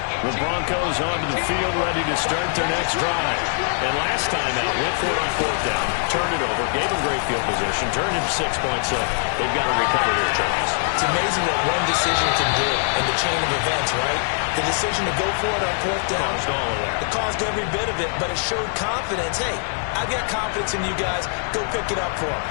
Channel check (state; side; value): silent; right; 62 dB below the other